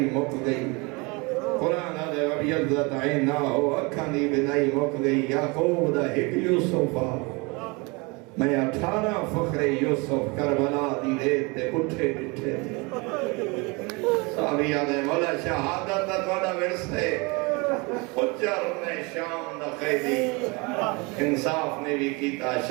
مک گئی قرآن آدھے وَبْيَضَّتْ عَيْنَاهُ اکھاں دی بنائی مک گئی یعقوب دا ہک یوسف میں 18 فخر یوسف کربلا دی ریت تے اٹھے ڈٹھے صحابی آدھے مولا شہادت دا توڑا ورسے اچھر نے شام دا قیدی انصاف نے بھی کیتا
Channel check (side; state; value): left; quieter; 27.8 dB